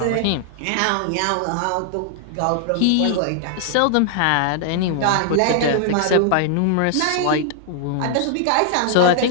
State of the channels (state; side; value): different; both; correlation 0.00